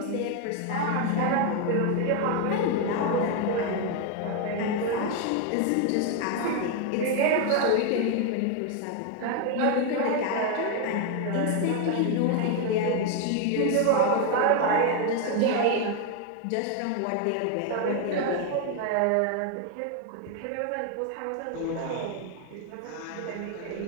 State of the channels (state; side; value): different; both; correlation 0.01